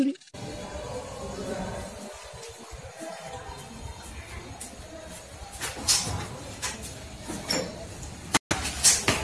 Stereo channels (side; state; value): both; identical; correlation 1.00